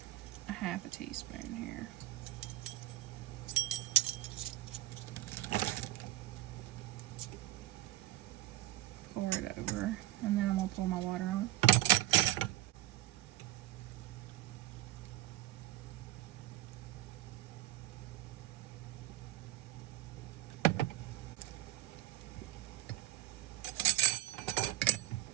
a half a teaspoon here. Pour it over, and then I'm going to pour my water on.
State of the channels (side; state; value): left; quieter; 16.1 dB